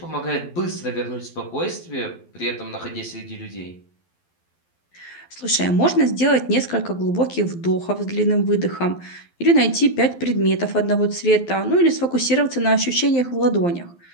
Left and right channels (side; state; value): right; late; 12 ms